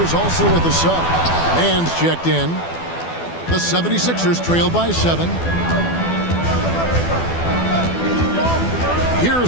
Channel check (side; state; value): right; late; 12 ms